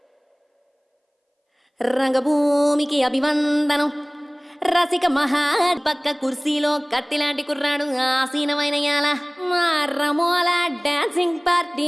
రంగభూమికి అభివందనం. రసిక మహా పక్క కుర్సీలో కత్తిలాంటి కుర్రాడు ఆసీనమైన యాల మా రమోల డాన్సింగ్ పార్టీ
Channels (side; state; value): both; identical; correlation 1.00